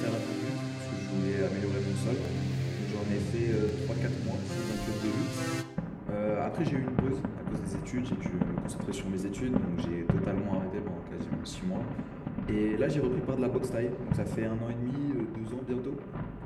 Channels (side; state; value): both; identical; correlation 1.00